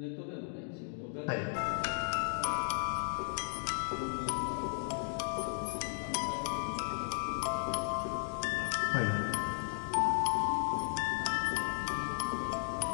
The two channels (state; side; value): silent; right; 54 dB below the other